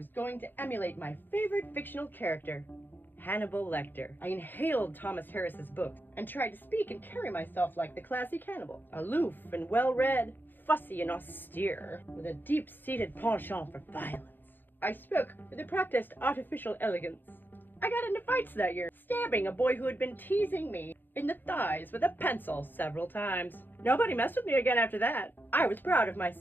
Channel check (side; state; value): right; late; 0.093 ms